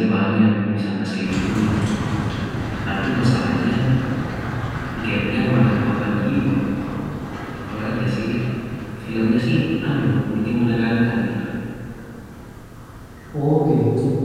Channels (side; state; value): both; identical; correlation 1.00